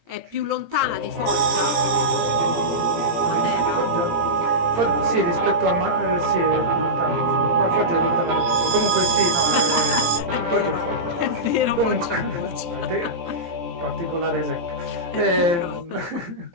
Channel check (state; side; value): late; left; 17 ms